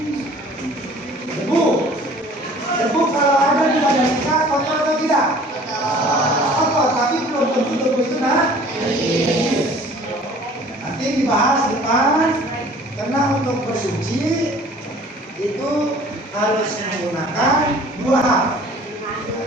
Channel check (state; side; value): normal; both; correlation 0.50